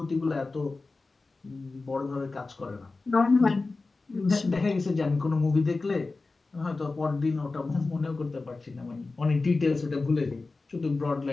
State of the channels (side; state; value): right; quieter; 3.7 dB